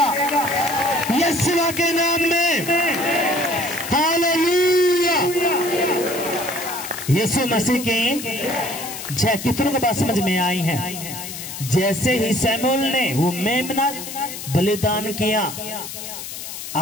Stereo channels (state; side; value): noise; left; hiss, 9 dB below the sound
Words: यीशु के नाम में। हालेलुया। यीशु मसीह की जय। कितनों को बात समझ में आई है। जैसे ही शमूएल ने वो मेमना बलिदान किया,